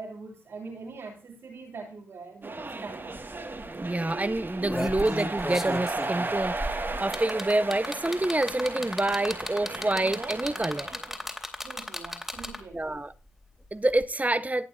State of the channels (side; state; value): both; normal; correlation 0.88